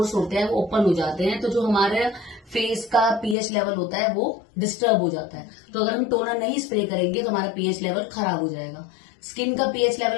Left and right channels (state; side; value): drops out; right; at 3.4 s